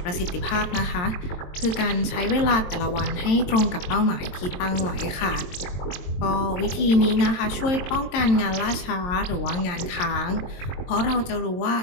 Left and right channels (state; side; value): late; right; 22 ms